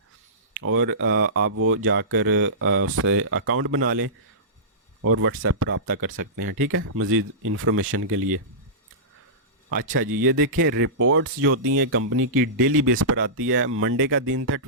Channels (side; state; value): both; normal; correlation -0.20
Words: और आप वो जाकर उससे अकाउंट बना लें और व्हाट्सएप पर रब्ता कर सकते हैं। ठीक है, मज़ीद इन्फॉर्मेशन के लिए। अच्छा जी, ये देखें रिपोर्ट्स जो होती हैं कंपनी की डेली बेस पर आती है। मंडे का दिन था